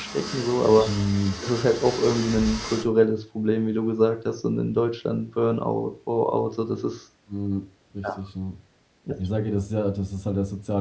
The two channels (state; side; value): identical; both; correlation 1.00